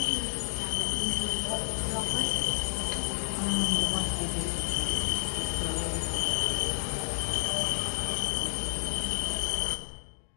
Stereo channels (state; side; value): silent; right; digital silence